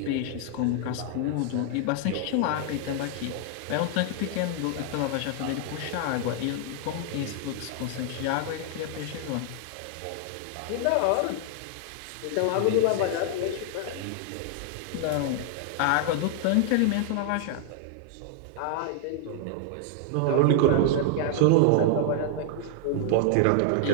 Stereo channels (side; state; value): both; different; correlation 0.00